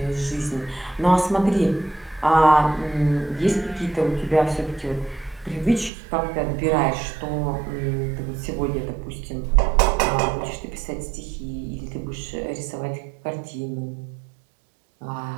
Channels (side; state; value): left; drops out; at 5.9 s